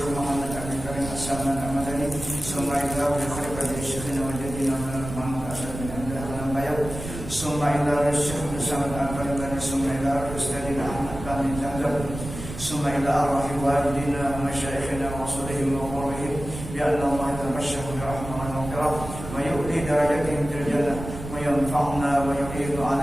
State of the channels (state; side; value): noise; right; rumble, 10 dB below the sound